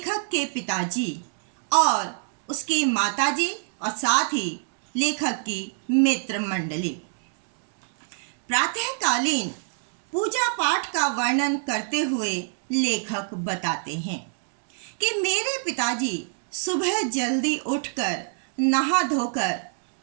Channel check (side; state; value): left; silent; 62 dB below the other